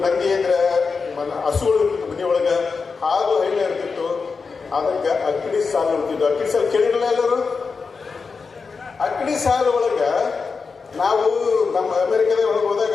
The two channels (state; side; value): quieter; right; 4.9 dB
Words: ನಂದಿ ಇದ್ರೆ ಹಸುಗಳು ಇರ್ತಿತ್ತು, ಮನೆಯೊಳಗೆ ಹಾಲು ಹೈಲೆ ಇರ್ತಿತ್ತು. ಅದಕ್ಕೆ ಅಕ್ಕಡಿ ಸಾಲು ಇರ್ತಿತ್ತು. ಅಕ್ಕಡಿ ಸಾಲು ಕೇಳಿರಲ್ಲ ಎಲ್ಲರೂ? ಅಕ್ಕಡಿ ಸಾಲು ಒಳಗೆ ನಾವು ನಮ್ಮ ಅಮೆರಿಕದ ಒಳಗೆ